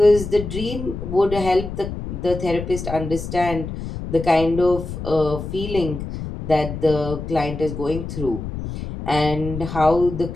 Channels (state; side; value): noise; left; rumble, 7 dB below the sound